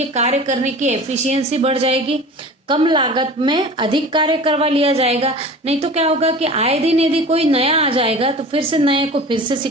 कार्य करने की एफिशिएंसी बढ़ जाएगी, कम लागत में अधिक कार्य करवा लिया जाएगा। नहीं तो क्या होगा कि आए दिन यदि कोई नया आ जाएगा तो फिर से नए को फिर से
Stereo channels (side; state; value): both; normal; correlation 0.38